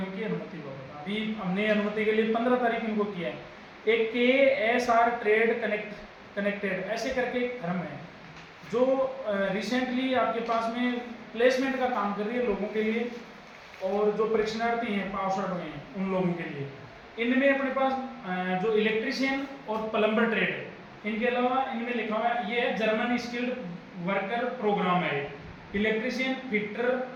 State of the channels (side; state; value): both; identical; correlation 1.00